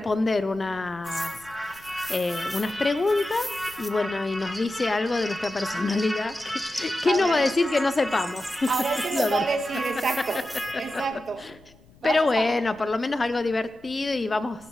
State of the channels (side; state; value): left; noise; rumble, 27 dB below the sound